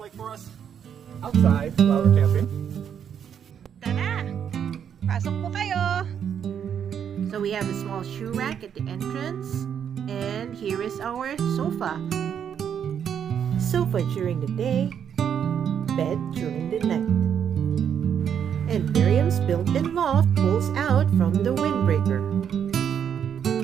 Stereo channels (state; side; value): quieter; left; 8.3 dB